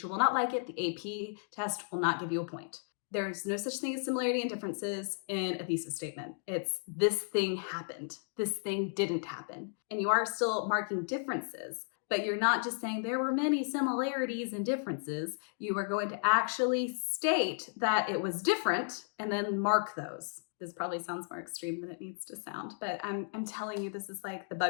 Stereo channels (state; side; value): silent; right; digital silence